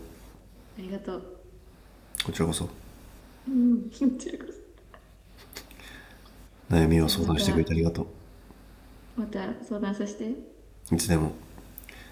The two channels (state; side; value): identical; both; correlation 1.00